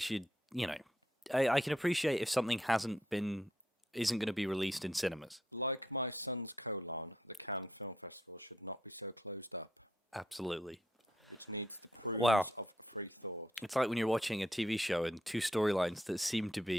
I can appreciate if something isn't going to be released in cinemas. Like my son's colon, the Cannes Film Festival should not be so closed up. Absolutely. Which needs the Wow. progress of the free floor. It's like when you're watching a TV show and two storylines that seem to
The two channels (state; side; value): normal; both; correlation 0.76